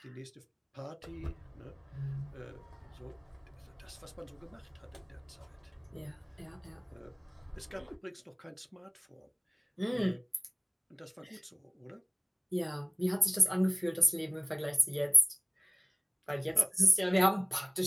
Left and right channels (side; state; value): both; identical; correlation 1.00